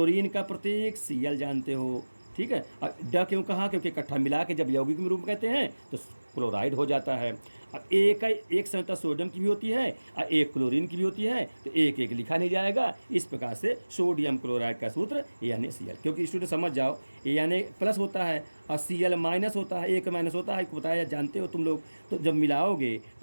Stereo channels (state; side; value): inverted; both; correlation -1.00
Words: का प्रतीक Cl जानते हो। ठीक है, और ड क्यों कहा, क्योंकि इकट्ठा मिला के जब यौगिक में रूप कहते हैं तो क्लोराइड हो जाता है। अब एक संयुक्ता सोडियम की भी होती है और एक क्लोरीन की भी होती है, तो एक लिखा नहीं जाएगा। इस प्रकार से सोडियम क्लोराइड का सूत्र NaCl, क्योंकि स्टूडेंट समझ जाओ, Na+ होता है और Cl- होता है, एक माइनस होता है, बताया जानते हो तुम लोग। तो जब मिलाओगे